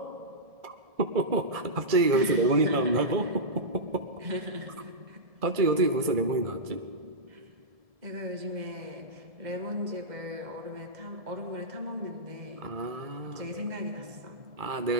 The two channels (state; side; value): late; left; 1.7 ms